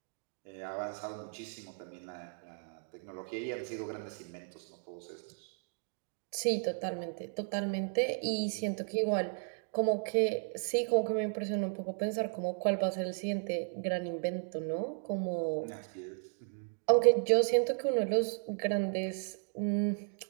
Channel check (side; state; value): left; silent; 55 dB below the other